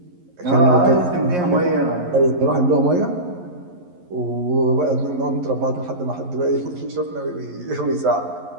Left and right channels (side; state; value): left; late; 11 ms